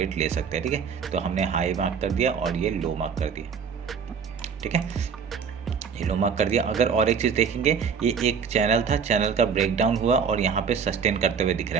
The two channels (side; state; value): left; quieter; 6.5 dB